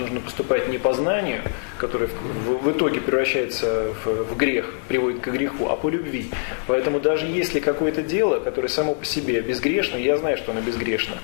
поступать не по знанию, которое в итоге превращается в грех, приводит к греху, а по любви. Поэтому даже если какое-то дело, которое само по себе безгрешно, я знаю, что оно безгрешно,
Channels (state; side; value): silent; right; digital silence